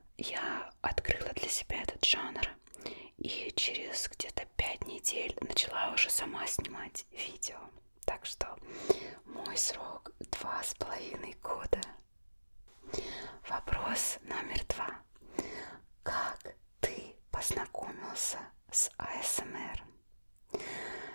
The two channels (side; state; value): both; inverted; correlation -1.00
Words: я открыла для себя этот жанр. И через где-то 5 недель начала уже сама снимать видео. Так что мой срок 2,5 года. Вопрос номер 2. Как ты познакомился с АСМР?